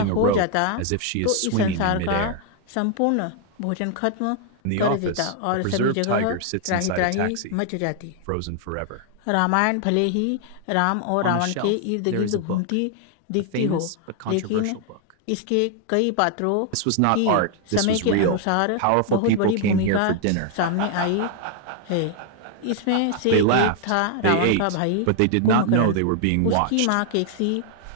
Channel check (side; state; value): both; different; correlation 0.00